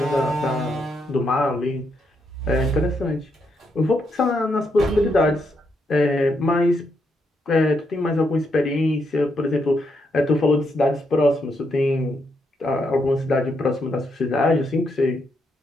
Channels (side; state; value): both; normal; correlation 0.79